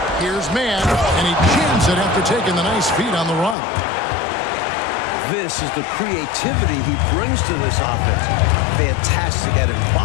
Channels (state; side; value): drops out; right; at 3.6 s